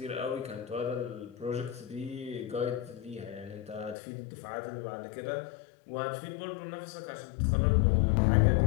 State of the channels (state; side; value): drops out; right; at 4.0 s